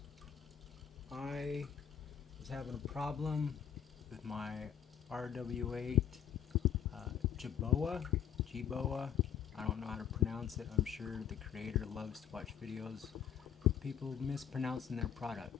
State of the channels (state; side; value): quieter; right; 9.0 dB